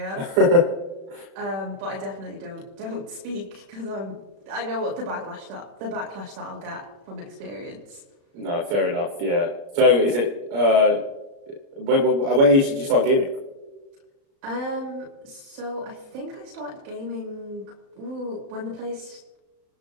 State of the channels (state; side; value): late; left; 36 ms